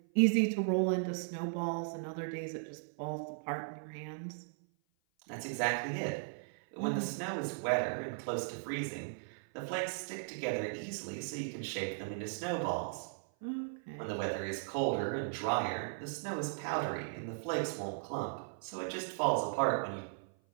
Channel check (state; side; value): silent; left; 53 dB below the other